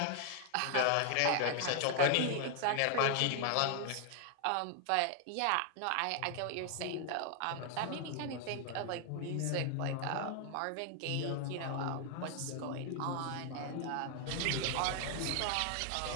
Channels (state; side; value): different; both; correlation 0.00